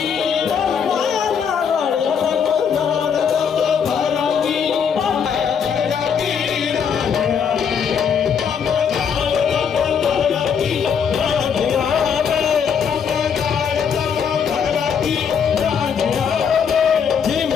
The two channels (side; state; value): right; quieter; 7.1 dB